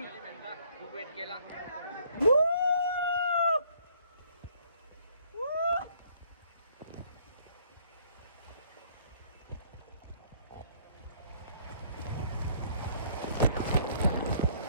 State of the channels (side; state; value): both; inverted; correlation -0.62